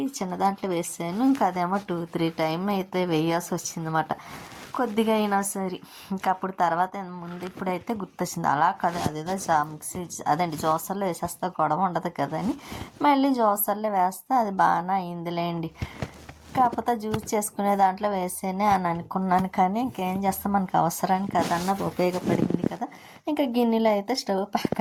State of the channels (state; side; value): identical; both; correlation 1.00